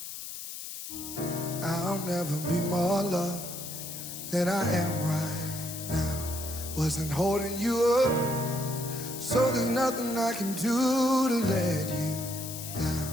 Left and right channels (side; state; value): left; noise; hiss, 9 dB below the sound